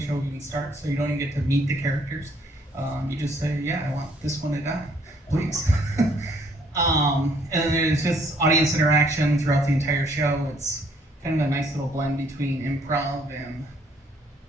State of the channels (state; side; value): normal; both; correlation 0.65